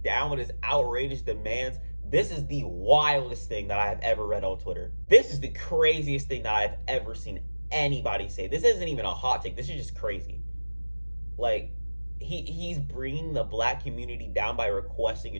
down with his outrageous demands. This is the wildest thing that I have ever read on Twitter. This is the craziest thing that I've ever seen anybody say. This isn't even a hot take. This is just crazy. Like, he's bringing the black community down by requesting a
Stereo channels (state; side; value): inverted; both; correlation -1.00